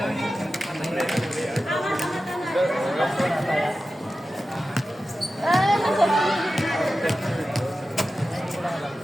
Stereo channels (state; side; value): normal; both; correlation 0.93